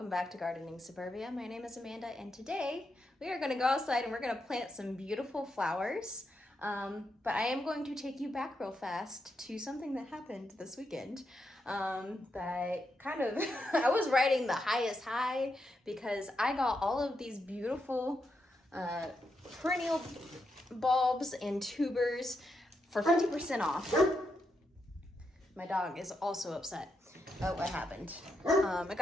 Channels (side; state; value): both; normal; correlation 0.83